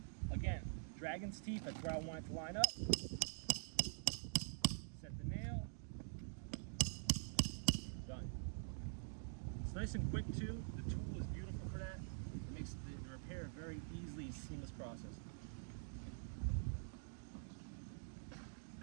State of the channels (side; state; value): left; silent; digital silence